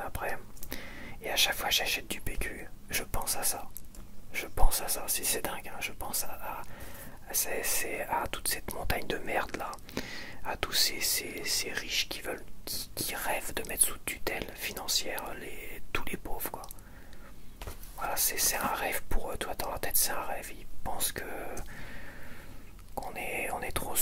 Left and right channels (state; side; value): identical; both; correlation 1.00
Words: après. Et à chaque fois que j'achète du PQ, je pense à ça. C'est dingue, hein. Je pense à toute cette montagne de merde là, à tous ces riches qui rêvent de mettre sous tutelle financière tous les pauvres, quoi. Voilà, c'est un rêve pour eux, toi dans la tête c'est un rêve. Ils pensent qu'on est trop